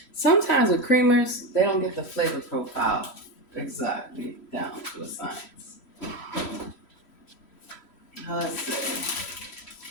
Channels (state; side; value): late; right; 3.1 ms